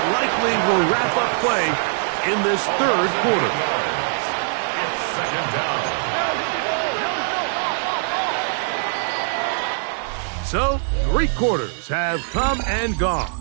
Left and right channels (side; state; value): left; silent; digital silence